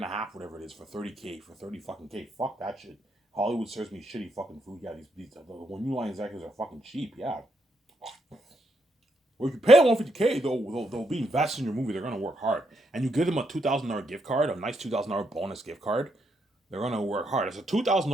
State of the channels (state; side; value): normal; both; correlation 0.78